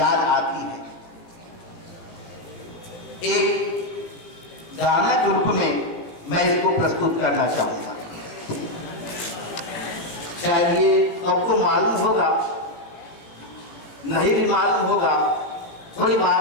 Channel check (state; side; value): late; right; 17 ms